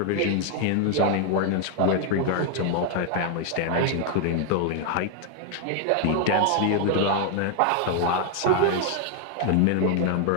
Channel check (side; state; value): both; different; correlation 0.00